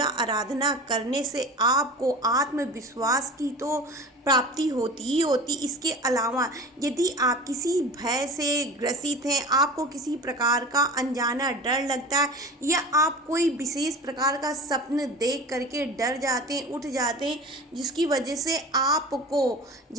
आराधना करने से आपको आत्मविश्वास की तो प्राप्ति होती ही होती। इसके अलावा यदि आप किसी भय से ग्रसित हैं, आपको किसी प्रकार का अनजाना डर लगता है या आप कोई विशेष प्रकार का स्वप्न देख करके डर जाते हैं, उठ जाते हैं, जिसकी वजह से आपको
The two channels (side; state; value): both; normal; correlation 0.35